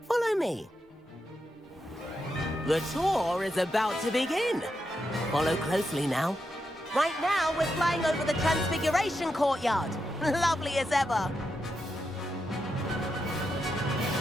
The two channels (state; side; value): normal; both; correlation 0.85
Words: Follow me. The tour is about to begin. Follow closely now. Right now, we're flying over the Transfiguration Courtyard. Lovely as ever.